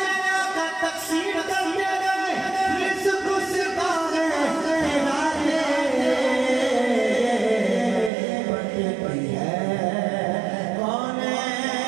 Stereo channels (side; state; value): left; drops out; at 8.1 s